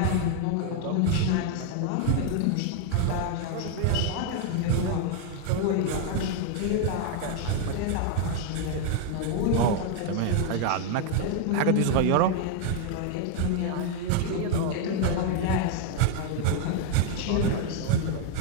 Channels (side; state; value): both; different; correlation 0.00